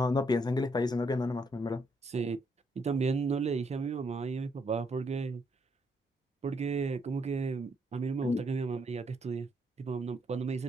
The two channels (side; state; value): both; normal; correlation 0.74